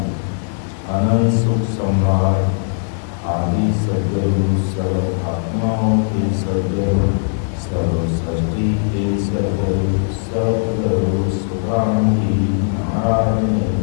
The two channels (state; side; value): silent; right; digital silence